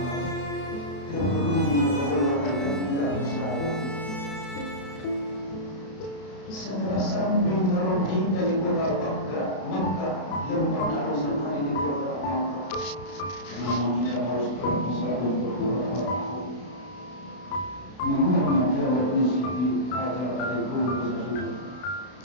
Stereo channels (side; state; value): right; late; 32 ms